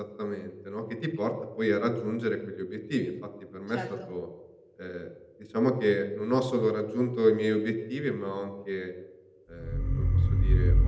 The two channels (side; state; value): both; identical; correlation 1.00